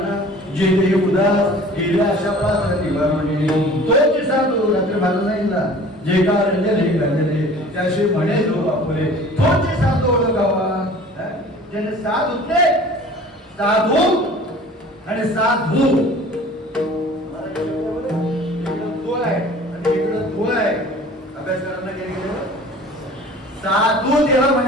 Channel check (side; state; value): both; normal; correlation 0.46